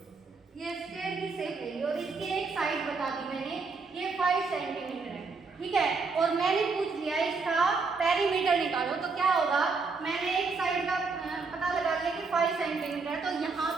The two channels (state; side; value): quieter; left; 4.4 dB